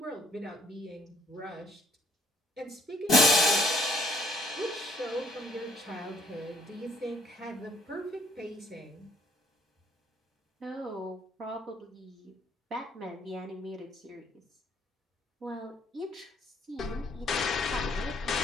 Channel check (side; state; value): both; normal; correlation 0.63